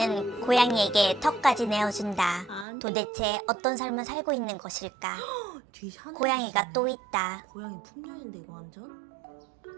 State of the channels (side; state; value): left; drops out; at 2.7 s